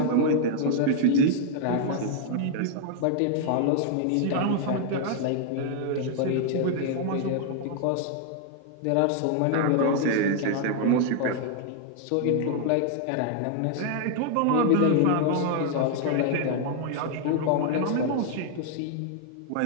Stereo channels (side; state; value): both; different; correlation 0.00